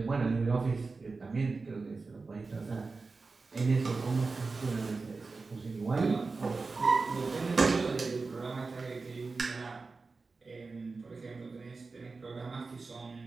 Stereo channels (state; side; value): quieter; left; 4.1 dB